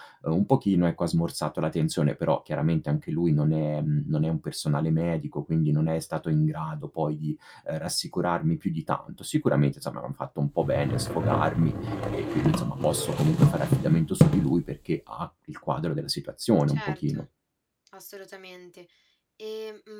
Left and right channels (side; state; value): both; identical; correlation 1.00